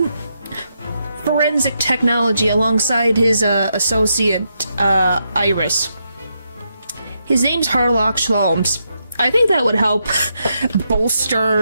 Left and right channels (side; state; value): both; inverted; correlation -0.81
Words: forensic technology alongside his associate, Iris. His name's Harlock Sholmes. I think that would help